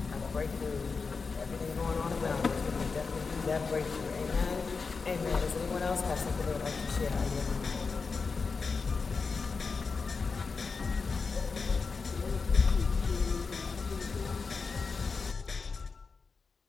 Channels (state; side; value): quieter; right; 4.8 dB